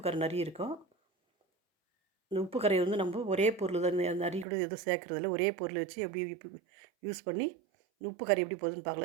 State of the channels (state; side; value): drops out; left; at 4.5 s